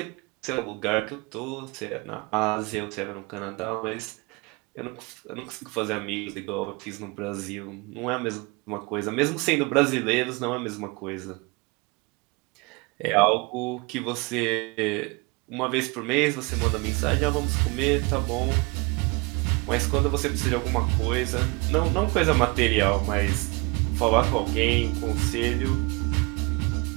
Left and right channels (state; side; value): quieter; left; 27.3 dB